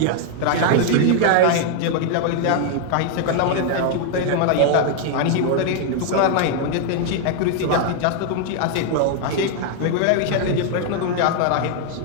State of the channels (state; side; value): different; both; correlation 0.00